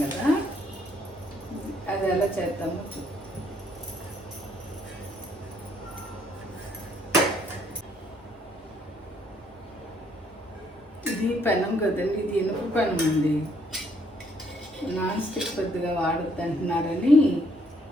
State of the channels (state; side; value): normal; both; correlation 0.68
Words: కదా, అది ఎలా చేద్దామో ఇది పెనం కదండి, ఇది ఇనుప పెనం అండి. నాన్ స్టిక్ పెద్దగా వాడద్దు అంటున్నారని